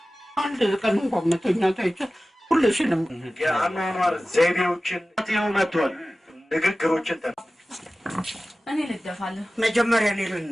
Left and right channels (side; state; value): both; normal; correlation 0.96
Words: አንድ ቀን እንኳን መተኛታይ ሁልሽንም የአኗኗር ዘይቤዎችን መጥቷል ንግግሮችን እኔ ልደፋለሁ መጀመሪያ እኔ